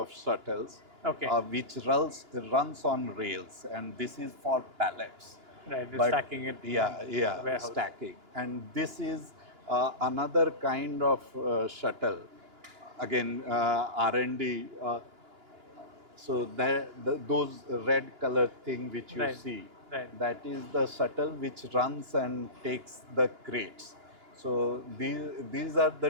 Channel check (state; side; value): late; left; 2.9 ms